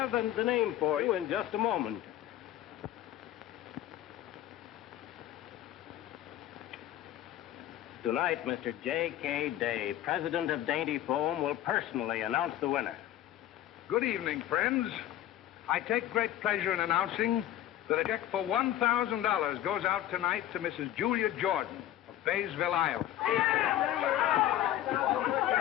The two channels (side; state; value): right; quieter; 12.8 dB